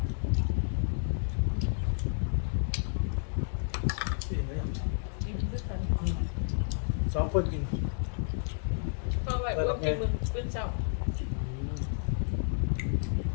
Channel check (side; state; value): right; silent; digital silence